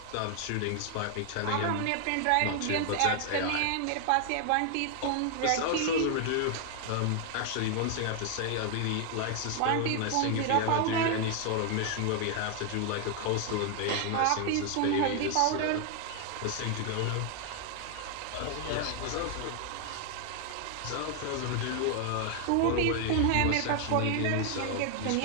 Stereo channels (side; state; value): both; different; correlation 0.00